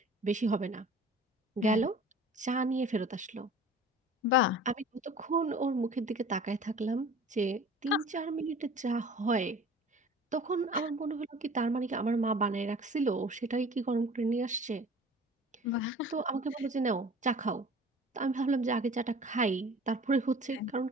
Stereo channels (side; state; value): both; normal; correlation 0.44